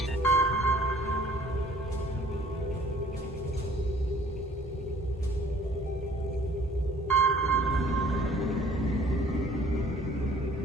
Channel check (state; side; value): normal; both; correlation 0.55